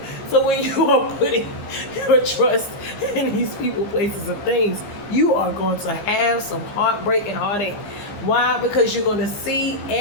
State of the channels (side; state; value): right; late; 15 ms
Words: So when you are putting your trust in these people, places, and things, you are going to have some heartbreak and heartache. Why? Because you're going to see